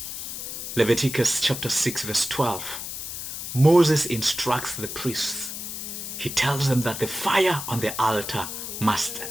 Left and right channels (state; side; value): noise; left; hiss, 7 dB below the sound